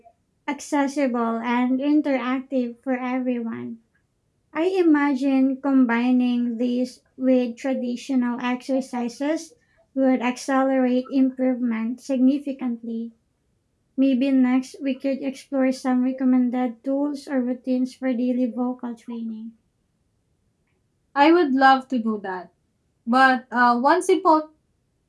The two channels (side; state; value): both; identical; correlation 1.00